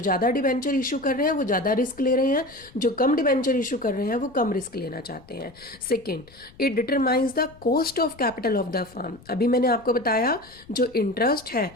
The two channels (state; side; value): noise; left; rumble, 24 dB below the sound